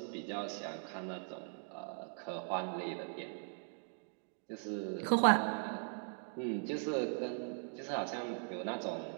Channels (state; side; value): silent; left; 51 dB below the other